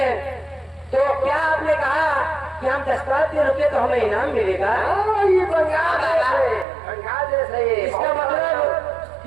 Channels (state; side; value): drops out; left; at 6.7 s